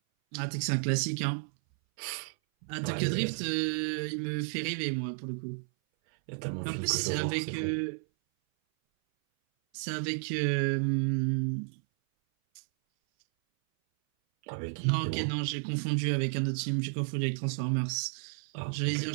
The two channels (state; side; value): silent; left; 56 dB below the other